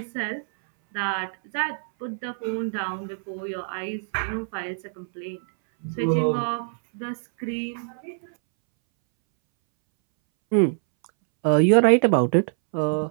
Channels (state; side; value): silent; left; 62 dB below the other